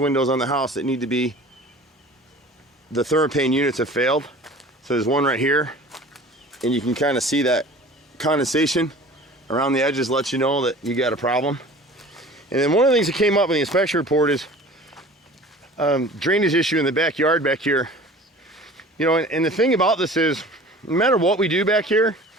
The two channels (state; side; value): normal; both; correlation 0.43